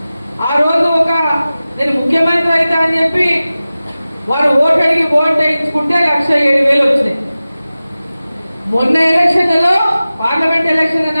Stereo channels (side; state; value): both; inverted; correlation -0.96